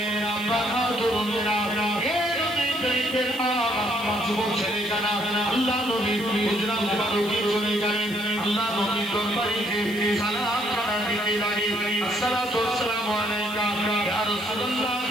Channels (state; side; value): noise; left; hiss, 17 dB below the sound